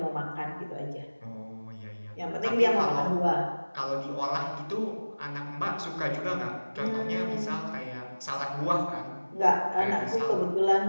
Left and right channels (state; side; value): inverted; both; correlation -1.00